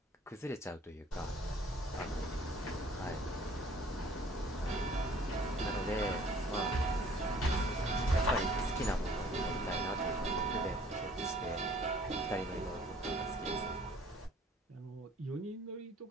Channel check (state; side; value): normal; both; correlation 0.55